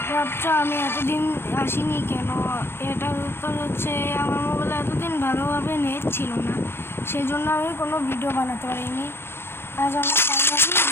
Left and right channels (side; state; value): right; late; 0.11 ms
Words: ভাবছো আমি এতদিন আসিনি কেন? এটার উত্তর হচ্ছে আমার মোবাইলে এতদিন ভালোভাবে নেট ছিল না, সেই জন্য আমি কোনো ভিডিও বানাতে পারিনি। আজ আমি ফাইনালি